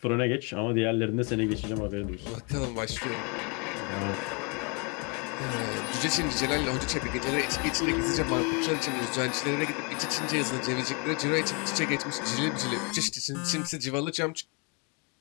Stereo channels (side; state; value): right; quieter; 33.3 dB